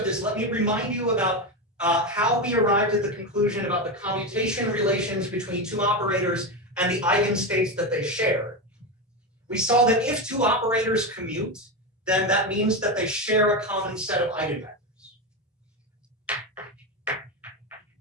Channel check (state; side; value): normal; both; correlation 0.15